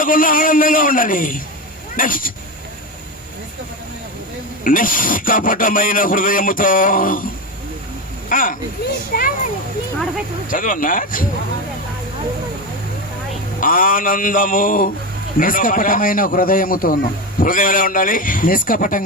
ఆనందంగా ఉండాలి. నెక్స్ట్, నిష్కపటమైన హృదయముతో చదవన్నా. ఆనందము నిష్కపటమైన హృదయముతోను. హృదయం ఎలా ఉండాలి?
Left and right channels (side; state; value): both; normal; correlation 0.17